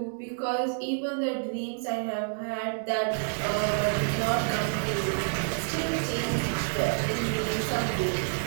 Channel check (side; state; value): left; silent; digital silence